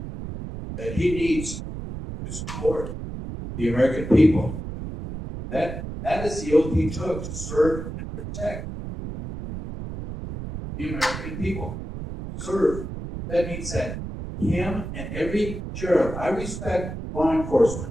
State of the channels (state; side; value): noise; right; rumble, 8 dB below the sound